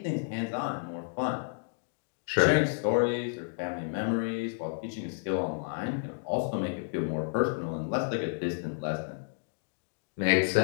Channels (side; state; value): right; silent; digital silence